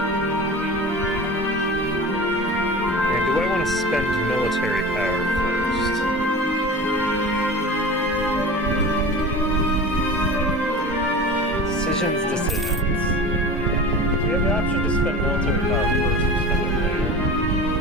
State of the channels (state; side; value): normal; both; correlation 0.34